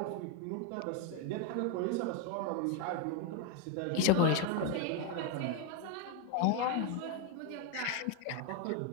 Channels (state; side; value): different; both; correlation 0.02